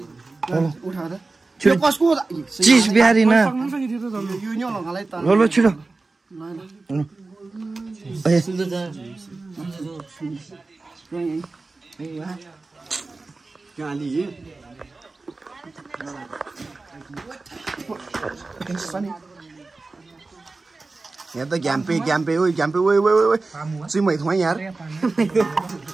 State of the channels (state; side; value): quieter; left; 3.6 dB